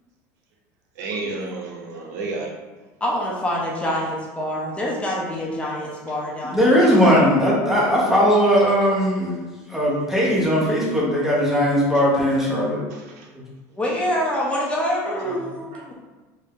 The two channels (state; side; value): normal; both; correlation 0.45